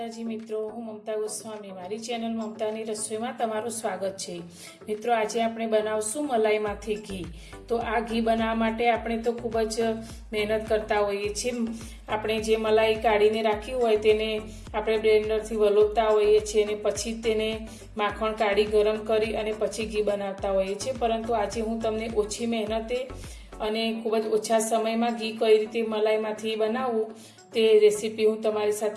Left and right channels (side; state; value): both; identical; correlation 1.00